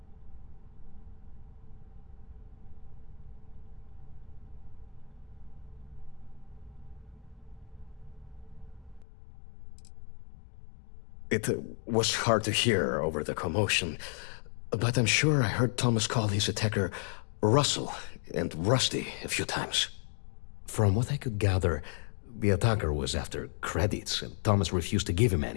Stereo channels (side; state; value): right; drops out; at 9.1 s